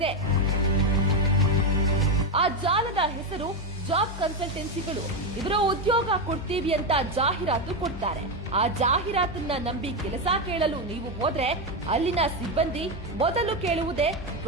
ಆ ಜಾಲದ ಹೆಸರು ಜಾಬ್ ಕನ್ಸಲ್ಟೆನ್ಸಿಗಳು. ಇವರು ಉದ್ಯೋಗ ಕೊಡ್ತೀವಿ ಅಂತ ಜಾಹೀರಾತು ಕೊಡ್ತಾರೆ. ಆ ಜಾಹೀರಾತನ್ನ ನಂಬಿ ಕೆಲಸ ಕೇಳಲು ನೀವು ಹೋದ್ರೆ ಅಲ್ಲಿನ ಸಿಬ್ಬಂದಿ ಮೊದಲು ಕೇಳುವುದೇ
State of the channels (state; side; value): normal; both; correlation 0.09